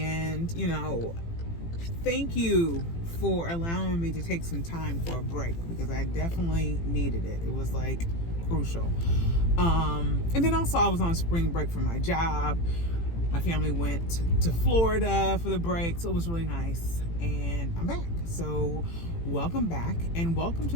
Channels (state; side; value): late; right; 18 ms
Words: thank you for allowing me to take some time for a break because I definitely needed it. It was like crucial. And then also I was on spring break from my job. My family went to Florida for the break, so it was really nice, and I'm back. So welcome back, and welcome